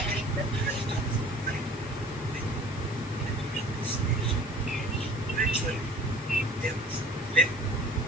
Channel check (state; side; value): normal; both; correlation 0.47